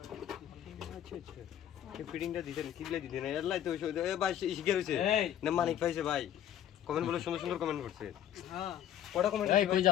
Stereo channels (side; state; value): right; quieter; 10.8 dB